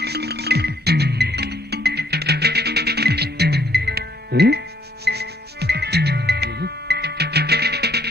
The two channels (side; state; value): both; normal; correlation 0.67